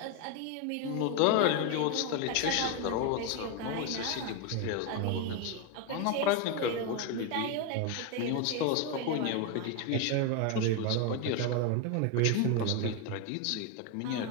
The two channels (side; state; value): both; different; correlation 0.02